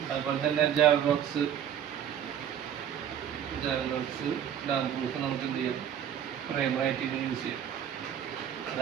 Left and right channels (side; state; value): left; quieter; 9.5 dB